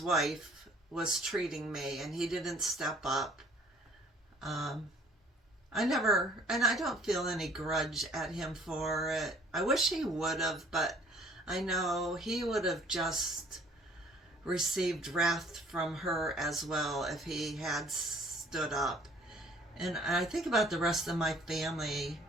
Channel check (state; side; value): normal; both; correlation 0.56